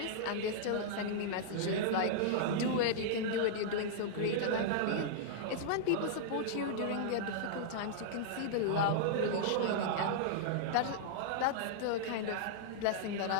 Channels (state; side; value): different; both; correlation -0.02